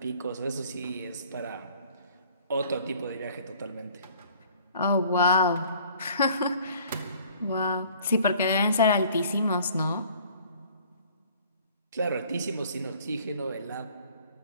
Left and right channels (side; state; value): both; inverted; correlation -0.53